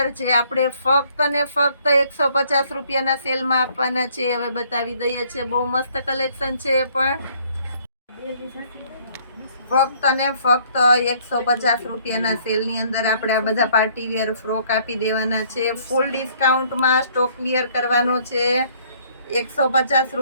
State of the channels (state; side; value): inverted; both; correlation -0.62